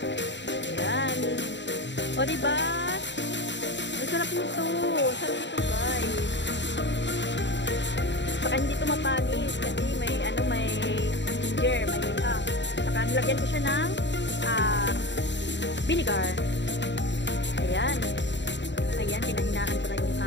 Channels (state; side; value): late; right; 0.52 ms